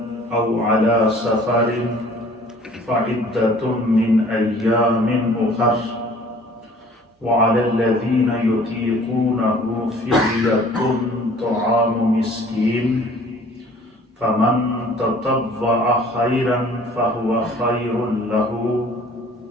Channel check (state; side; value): normal; both; correlation 0.52